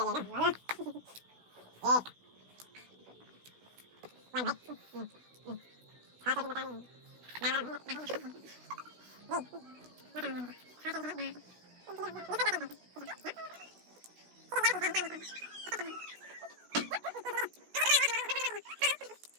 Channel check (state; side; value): late; left; 16 ms